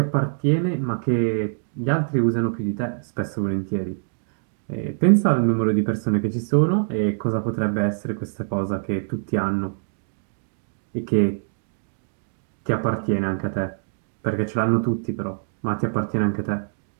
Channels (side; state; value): left; silent; digital silence